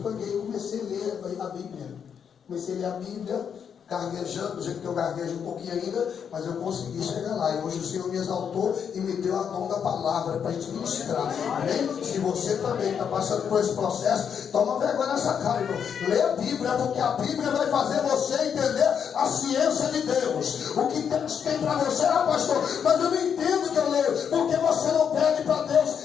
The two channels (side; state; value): right; quieter; 7.5 dB